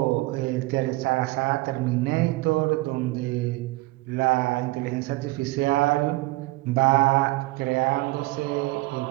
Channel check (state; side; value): quieter; left; 20.9 dB